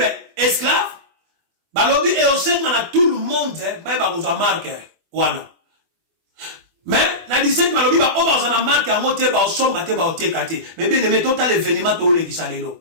esclave. Balobi et au sein de tout le monde, mais bah vous a marqué, wana. Mais na 17 balobi bah on va en marqué en moté bah au son baté bah au tekate. Mais bien aimé total événement to le qui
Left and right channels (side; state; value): left; late; 24 ms